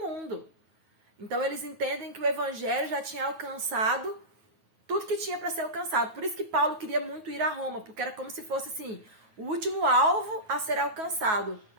Então, eles entendem que o Evangelho já tinha alcançado tudo que tinha para ser alcançado. Por isso que Paulo queria muito ir a Roma, porque era como se fosse assim, o último alvo a ser alcançado,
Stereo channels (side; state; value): left; late; 9.3 ms